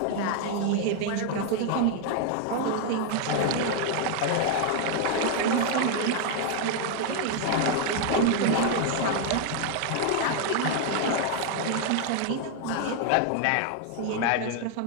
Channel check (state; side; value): different; both; correlation 0.00